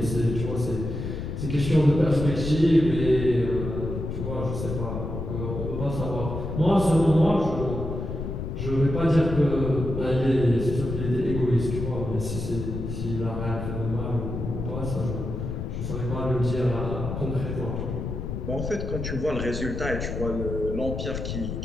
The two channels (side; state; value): left; noise; rumble, 5 dB below the sound